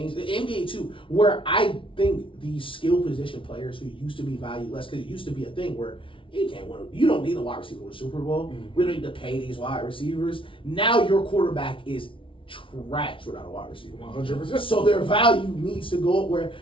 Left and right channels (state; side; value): late; right; 0.25 ms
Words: The NBA, too, where I think these skill position players who used to be valued less, because it used to be a thing where you can't win. You don't need a wide receiver in the Super Bowl. We don't need to pay these wide receivers. Now your quarterback is trash without a wide receiver. 100%. So their value needs to go up where